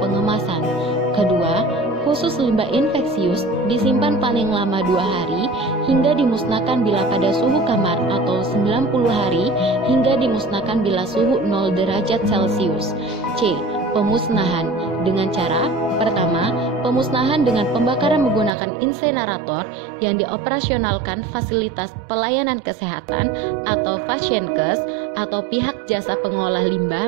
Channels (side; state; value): left; drops out; at 18.5 s